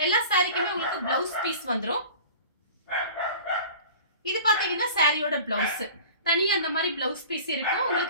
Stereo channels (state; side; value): inverted; both; correlation -0.41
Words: எல்லா சாரிக்குமே உங்களுக்கு பிளவுஸ் பீஸ் வந்துடும். இது பார்த்தீங்கன்னா சாரியோட பிளவுஸ் தனியா அந்த மாதிரி பிளவுஸ் பீஸ் இருக்கும்.